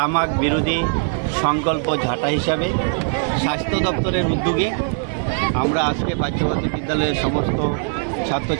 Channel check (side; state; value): left; silent; 62 dB below the other